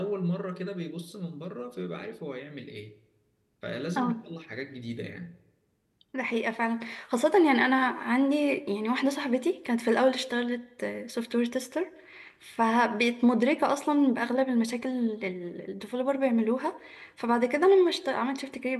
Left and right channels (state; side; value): identical; both; correlation 1.00